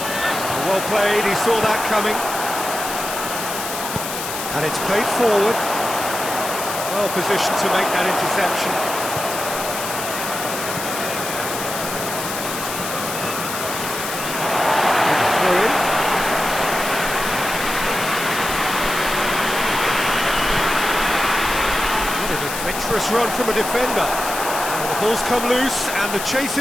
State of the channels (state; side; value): noise; left; hiss, 6 dB below the sound